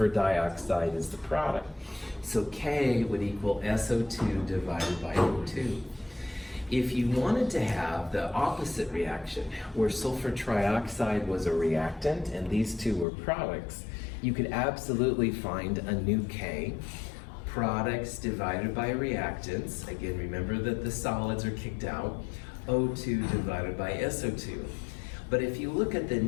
dioxide is the product. So K would equal SO2 divided by O2. If you wanted to have the opposite reaction, where sulfur trioxide was a reactant and these two were products, you could absolutely find a new K, products divided by reactants. Again, remember that the solids are kicked out, O2 divided by SO2. But if you look at the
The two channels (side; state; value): right; drops out; at 13.1 s